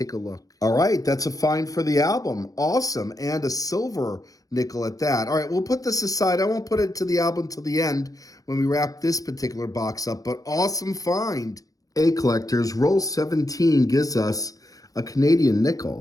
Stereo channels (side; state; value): right; late; 0.17 ms